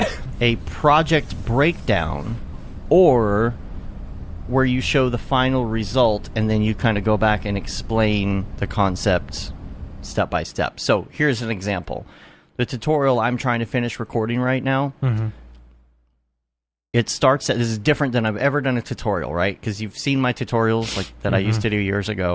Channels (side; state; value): both; identical; correlation 1.00